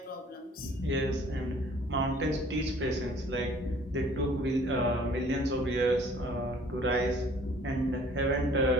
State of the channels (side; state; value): both; normal; correlation 0.55